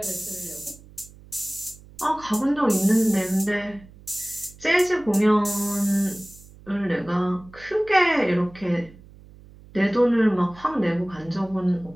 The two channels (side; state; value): right; noise; hum, 22 dB below the sound